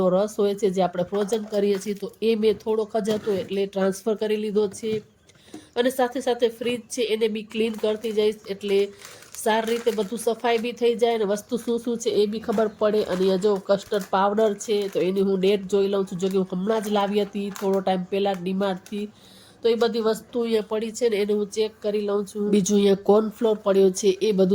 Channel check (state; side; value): identical; both; correlation 1.00